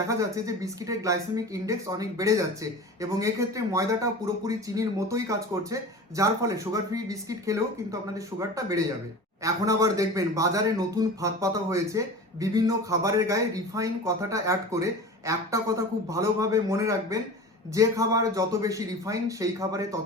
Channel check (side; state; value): both; normal; correlation 0.35